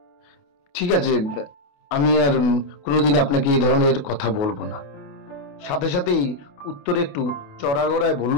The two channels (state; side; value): late; right; 28 ms